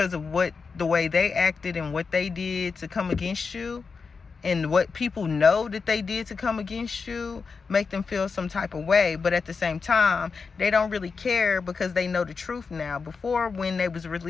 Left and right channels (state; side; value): quieter; right; 5.0 dB